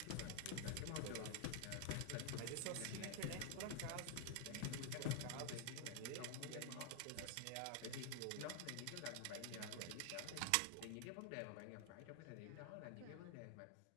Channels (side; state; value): both; different; correlation 0.00